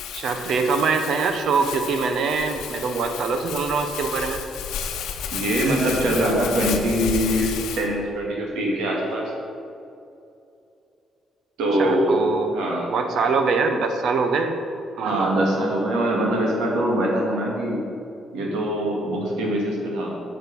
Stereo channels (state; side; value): normal; both; correlation 0.65